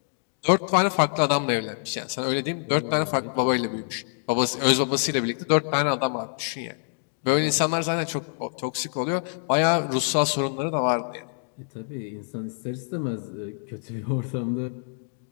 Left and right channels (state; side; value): silent; right; digital silence